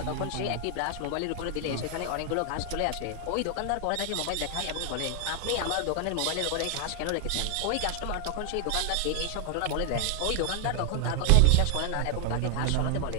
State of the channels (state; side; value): different; both; correlation 0.00